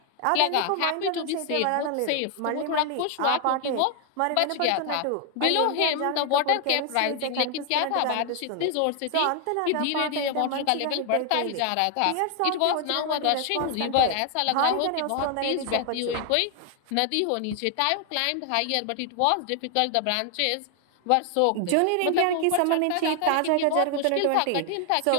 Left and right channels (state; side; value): different; both; correlation 0.00